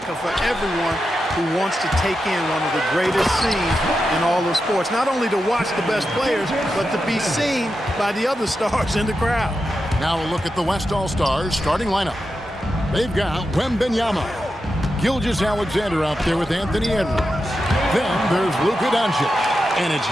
for everyone who wants to take in one of the greatest scenes in all of sports. Not only to watch the best players, but to be seen by the other stars in the crowd. Now a look at the West All-Stars starting lineup. They've got WEMBY, Gilgeous-Alexander out there with Anthony Edwards. Then there's Luka Doncic, and it's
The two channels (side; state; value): both; normal; correlation 0.89